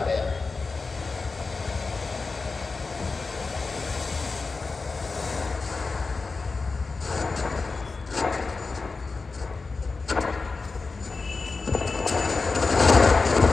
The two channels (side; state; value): right; quieter; 4.1 dB